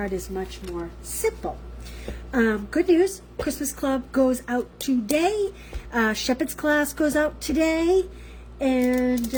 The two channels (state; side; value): identical; both; correlation 1.00